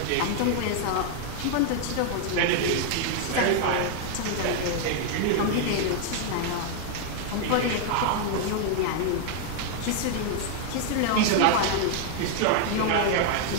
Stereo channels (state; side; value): different; both; correlation 0.00